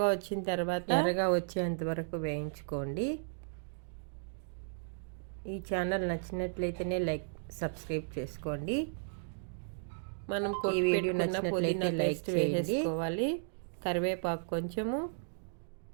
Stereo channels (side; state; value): left; silent; digital silence